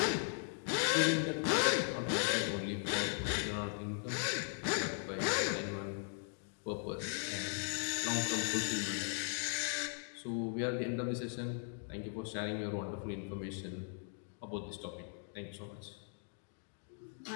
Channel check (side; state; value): right; silent; 52 dB below the other